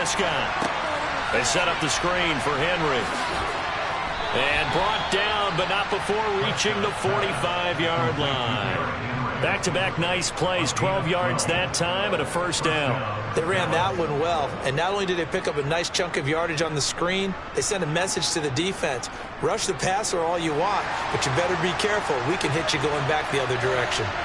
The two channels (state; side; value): identical; both; correlation 1.00